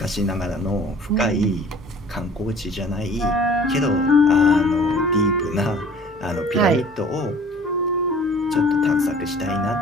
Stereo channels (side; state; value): both; normal; correlation 0.50